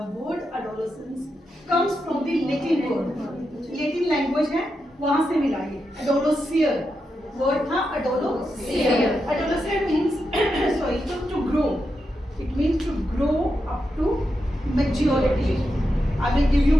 word adolescence comes from the Latin word, Latin language है, वहां से मिला ये एडोलोसियर वर्ड था, adolescere. Adolescere means sorry to grow, it means to grow up to maturity. I will give you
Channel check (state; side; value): normal; both; correlation 0.86